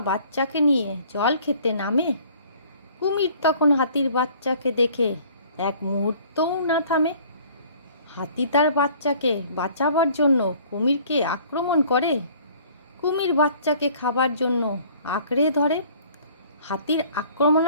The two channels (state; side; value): inverted; both; correlation -0.53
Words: বাচ্চাকে নিয়ে জল খেতে নামে। কুমির তখন হাতির বাচ্চাকে দেখে এক মুহূর্তও না থামে। হাতি তার বাচ্চাকে বাঁচাবার জন্য কুমিরকে আক্রমণ করে। কুমির বাচ্চাকে খাবার জন্য আঁকড়ে ধরে। হাতির